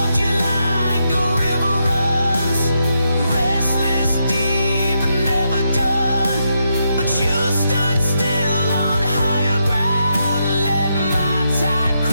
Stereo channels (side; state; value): both; inverted; correlation -0.81